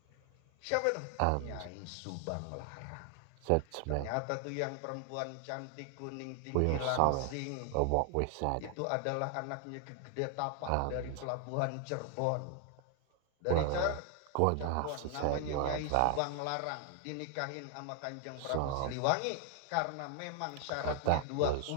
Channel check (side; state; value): both; different; correlation 0.00